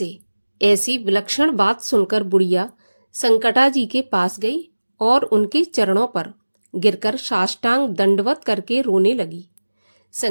ऐसी विलक्षण बात सुनकर बुढ़िया संकटा जी के पास गई और उनके चरणों पर गिरकर साष्टांग दंडवत करके रोने लगी।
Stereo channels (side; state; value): both; inverted; correlation -1.00